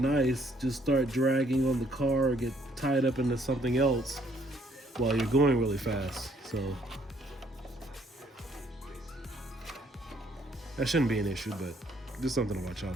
just start dragging on the car or get tied up into something else while you're going really fast. So that shouldn't be an issue, but just something to watch out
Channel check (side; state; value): both; normal; correlation 0.66